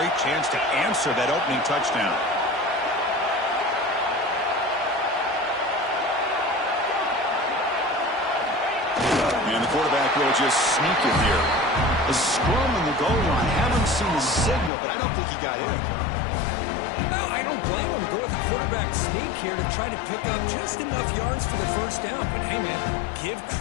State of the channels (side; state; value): right; drops out; at 14.7 s